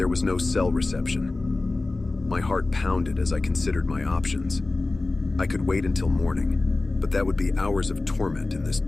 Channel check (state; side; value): quieter; right; 3.2 dB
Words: was no cell reception. My heart pounded as I considered my options. I could wait until morning, but that would be hours of torment in this